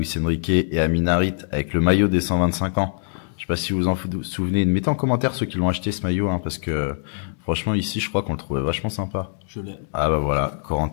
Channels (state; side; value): silent; right; digital silence